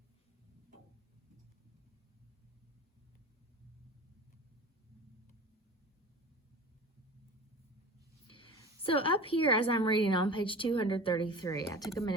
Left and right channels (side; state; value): both; normal; correlation 0.37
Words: So up here, as I'm reading on page 233, I took a